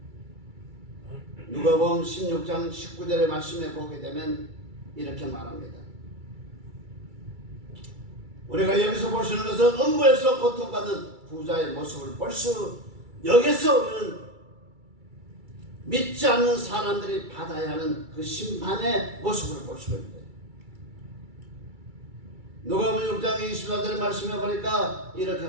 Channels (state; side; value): late; left; 2.3 ms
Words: 누가복음 16장 19절의 말씀에 보게 되면 이렇게 말합니다. 우리가 여기서 볼 수 있는 것은 음부에서 고통받는 부자의 모습을 볼 수, 여기서 우리는 믿지 않는 사람들이 받아야 하는 그 심판의 모습을 볼 수가 있는데, 누가복음 6장 24절의 말씀에 보니까 이렇게